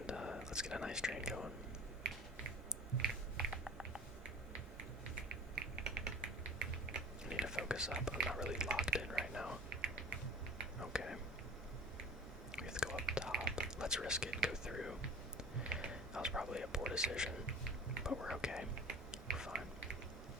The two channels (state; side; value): normal; both; correlation 0.40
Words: let's get a nice train going. I need to focus up. I'm not really locked in right now. Okay. We have to go up top. Let's risk it and go through. That was probably a poor decision, but we're okay. We're fine.